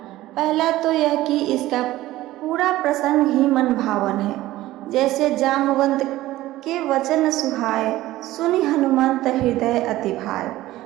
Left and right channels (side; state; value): left; quieter; 16.2 dB